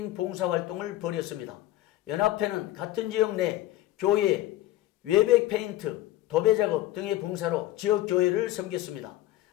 봉사활동을 벌였습니다. 연합회는 같은 지역 내 교회, 외벽 페인트, 도배 작업 등의 봉사로 지역 교회를 섬겼습니다.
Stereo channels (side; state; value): right; quieter; 15.1 dB